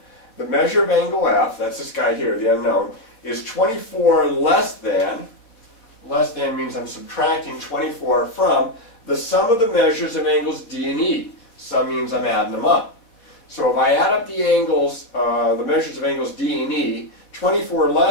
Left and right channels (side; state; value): right; late; 4.2 ms